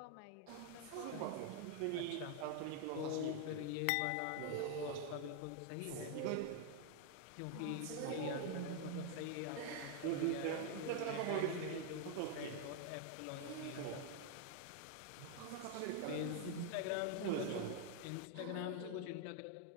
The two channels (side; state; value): both; different; correlation 0.00